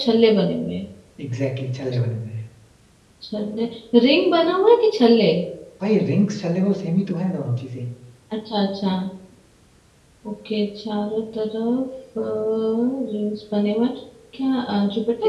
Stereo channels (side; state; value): both; identical; correlation 1.00